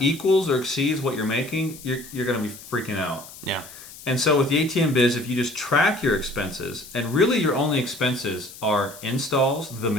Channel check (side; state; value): left; noise; hiss, 17 dB below the sound